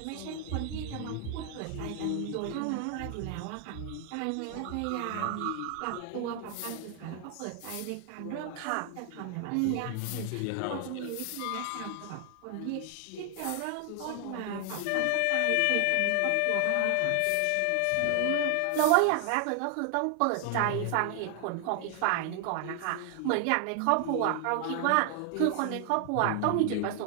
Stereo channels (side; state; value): both; different; correlation 0.00